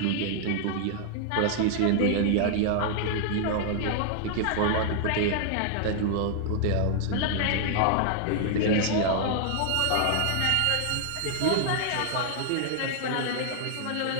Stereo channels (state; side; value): different; both; correlation 0.00